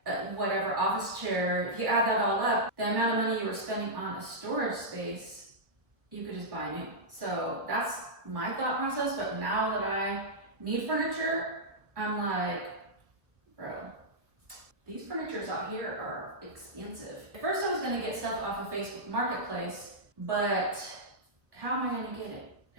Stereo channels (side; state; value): left; late; 1.0 ms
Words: whatever, office chair, if you add that all up, the amount of money you were spending on a storage space, you could just buy new. So that's my thought process, but now that I need furniture, I'm like, bro, these furnitures out here are expensive. At first I was gonna get stuff off of Facebook Marketplace, but how am I gonna get it?